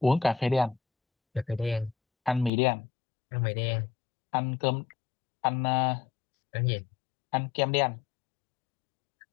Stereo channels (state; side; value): drops out; right; at 2.5 s